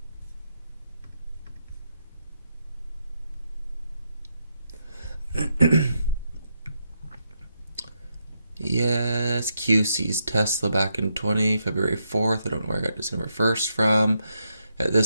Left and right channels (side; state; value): both; inverted; correlation -0.81